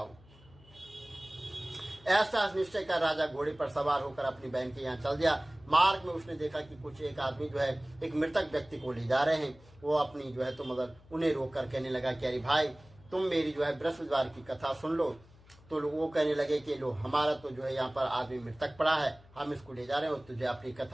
ऐसा निश्चय कर राजा घोड़े पर सवार होकर अपनी बहन के यहाँ चल दिया। मार्ग में उसने देखा कि कुछ एक आदमी जो है एक मृतक व्यक्ति को ले जा रहे हैं। वो अपनी जो है तो मगर उन्हें रोक कर कहने लगा कि अरे भाई, तुम मेरी जो है बृहस्पतिवार की कथा सुन लो। तो वो कहने लगे कि लो, हमारा तो जो है यहाँ पर आदमी मृतक पड़ा है, हम इसको ले जा रहे हैं और तुझे अपनी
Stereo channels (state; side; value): noise; left; hum, 25 dB below the sound